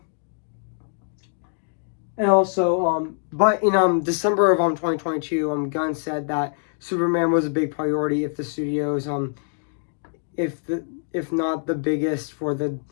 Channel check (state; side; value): silent; right; 62 dB below the other